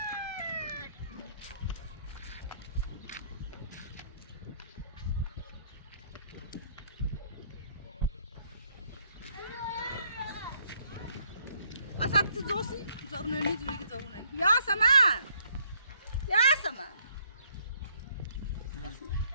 أصابت زوسي زورنني زوجي زورنني يا سمان يا سمان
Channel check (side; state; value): both; inverted; correlation -0.66